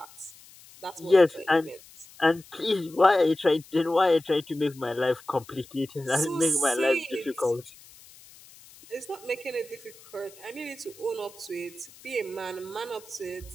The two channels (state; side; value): noise; left; hiss, 22 dB below the sound